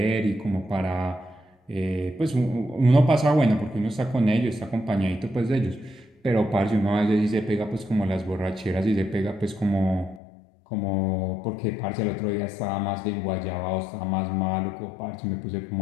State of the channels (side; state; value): right; drops out; at 10.2 s